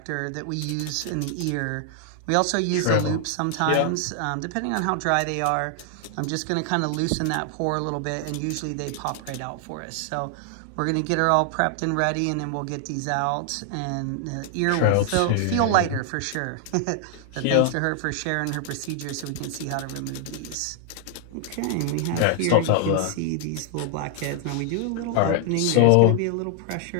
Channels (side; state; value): both; different; correlation 0.00